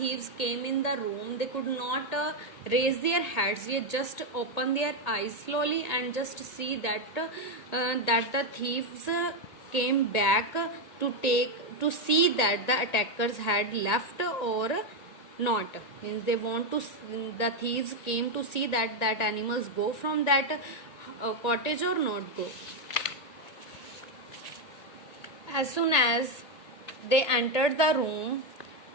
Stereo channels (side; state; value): right; late; 1.8 ms